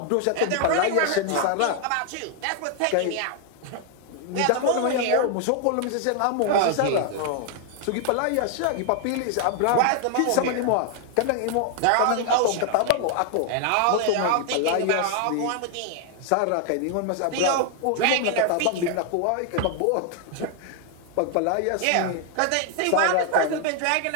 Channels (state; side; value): different; both; correlation 0.00